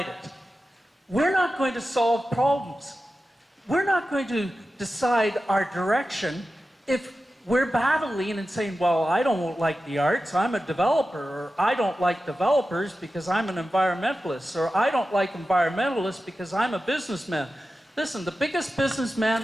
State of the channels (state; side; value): normal; both; correlation 0.93